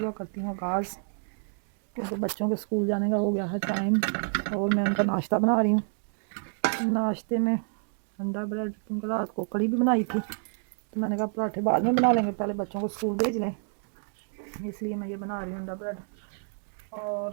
करती हूँ आगाज़, क्योंकि बच्चों के स्कूल जाने का हो गया है टाइम और मैं उनका नाश्ता बना रही हूँ। नाश्ते में अंडा ब्रेड, क्योंकि रात को कड़ी भी बनाई थी तो मैंने कहा पराठे बाद में बना लेंगे, पहले बच्चों को स्कूल भेज लें, इसलिए मैं ये बना रही हूँ अंडा ब्रेड।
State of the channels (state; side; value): silent; left; 59 dB below the other